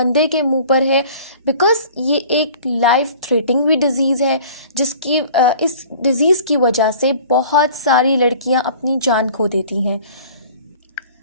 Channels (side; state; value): both; inverted; correlation -0.47